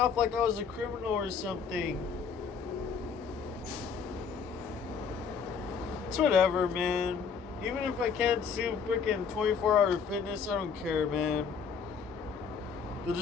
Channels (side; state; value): right; quieter; 6.2 dB